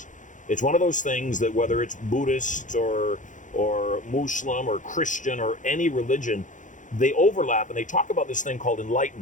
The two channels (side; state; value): right; late; 0.37 ms